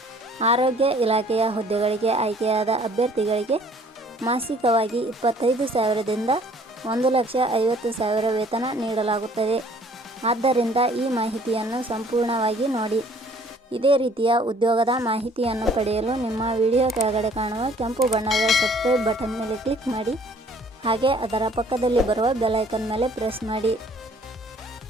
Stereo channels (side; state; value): both; normal; correlation 0.57